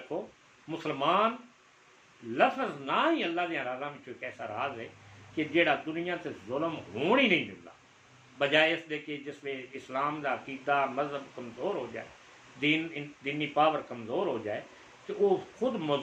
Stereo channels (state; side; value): identical; both; correlation 1.00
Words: मुसलमान लफ्ज़ ना ही अल्लाह के राज़ा में एक ऐसा राज है कि जेड़ा दुनिया से जुल्म होने ही नहीं मिलता, बजाय इसके कि जिसमें इस्लाम का अकीदा मजहब कमज़ोर हो जाए, दीनी पावर कमज़ोर हो जाए, तो वो खुद